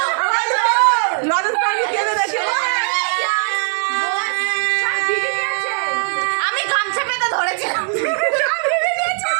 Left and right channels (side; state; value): left; silent; digital silence